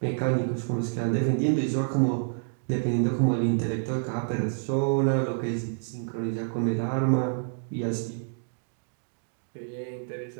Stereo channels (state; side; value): silent; left; digital silence